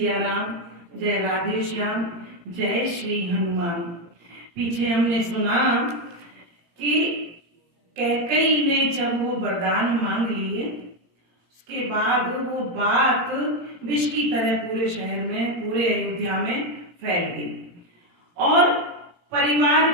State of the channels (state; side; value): late; left; 17 ms